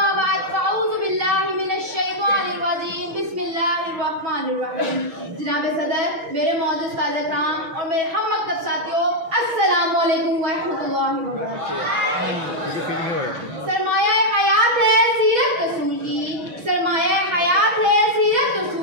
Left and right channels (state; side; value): late; left; 6.2 ms